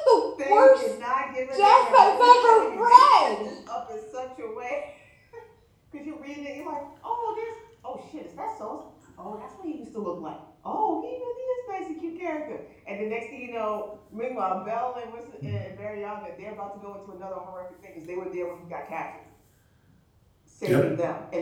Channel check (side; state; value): both; identical; correlation 1.00